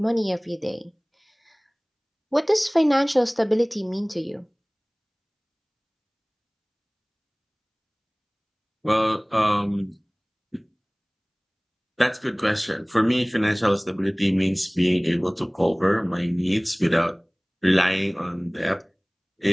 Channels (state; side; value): identical; both; correlation 1.00